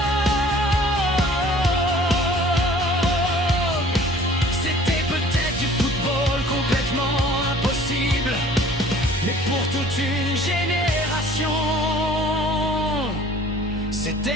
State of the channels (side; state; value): both; normal; correlation 0.51